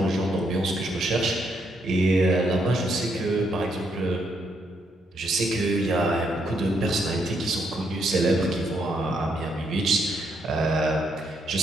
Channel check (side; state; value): both; normal; correlation 0.76